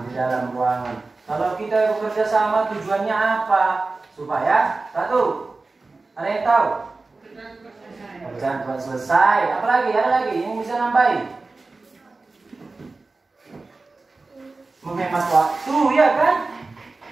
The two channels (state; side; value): quieter; left; 3.6 dB